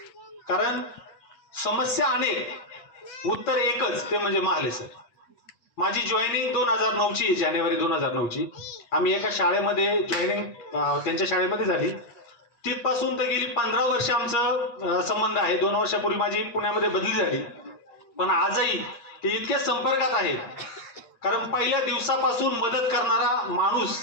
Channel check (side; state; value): right; late; 8.5 ms